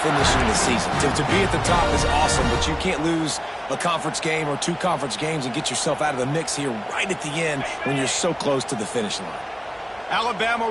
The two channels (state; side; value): identical; both; correlation 1.00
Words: finishing the season. To be at the top is awesome, but you can't lose a conference game or 2 conference games and get yourself out of the mix here right at the end when you're so close to the finish line. Alabama